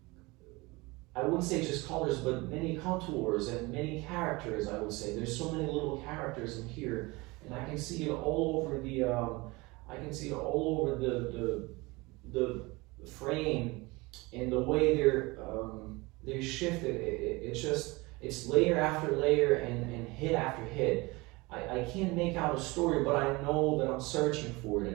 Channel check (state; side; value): quieter; left; 23.7 dB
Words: I wouldn't say just colors, but many contours and many characters. I would say there's so many little characters in here, and I can see it all over the. I can see it all over the frame, and the way they're shifted. It's layer after layer and hit after hit. I can't make out a story, but I know that I'm searching for it,